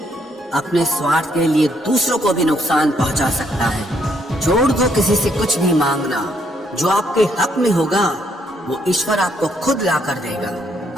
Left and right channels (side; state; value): both; normal; correlation 0.71